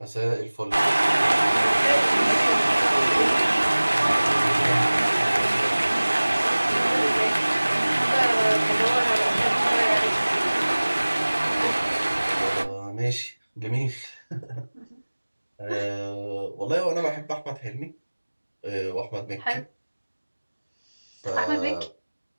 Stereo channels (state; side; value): inverted; both; correlation -1.00